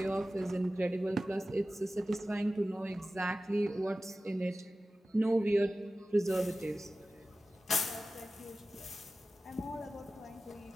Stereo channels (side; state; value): both; normal; correlation 0.95